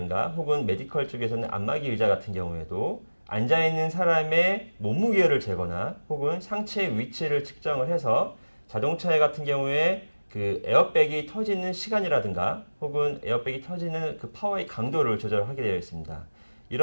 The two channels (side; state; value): both; inverted; correlation -1.00